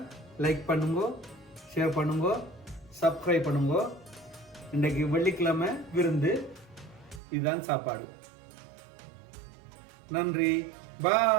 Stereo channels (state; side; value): drops out; left; at 7.2 s